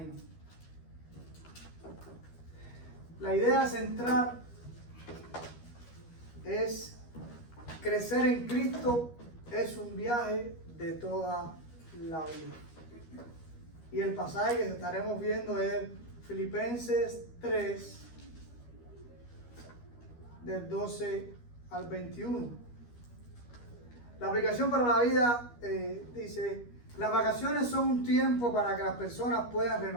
La idea central es crecer en Cristo es un viaje de toda la vida. Y el pasaje que estaremos viendo es Filipenses 3, del 12 al 21. La aplicación para la vida dice: las vacaciones son un tiempo para que las personas puedan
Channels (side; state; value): right; late; 13 ms